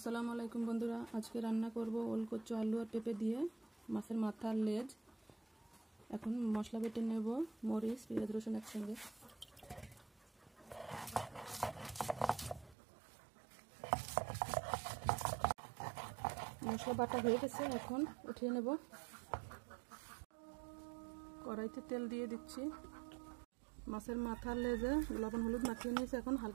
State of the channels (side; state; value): left; drops out; at 12.8 s